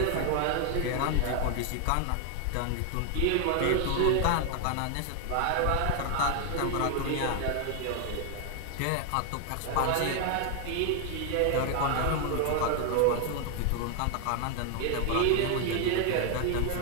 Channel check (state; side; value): different; both; correlation 0.00